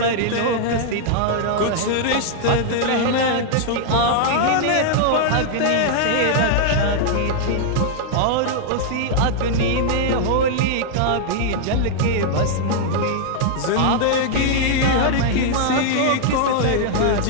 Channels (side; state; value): both; different; correlation -0.01